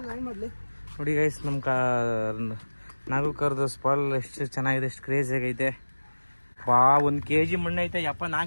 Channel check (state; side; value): inverted; both; correlation -1.00